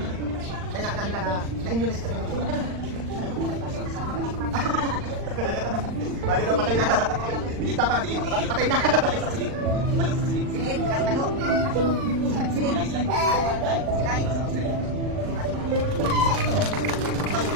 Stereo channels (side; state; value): left; late; 39 ms